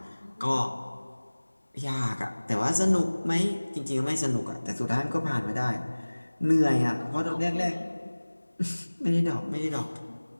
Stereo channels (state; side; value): inverted; both; correlation -1.00